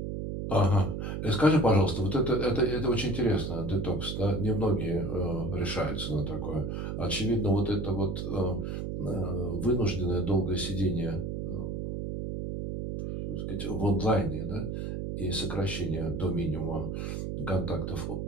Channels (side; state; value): right; noise; hum, 4 dB below the sound